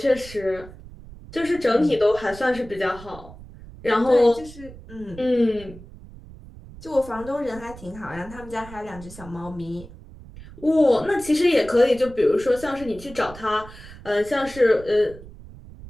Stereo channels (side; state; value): right; noise; rumble, 17 dB below the sound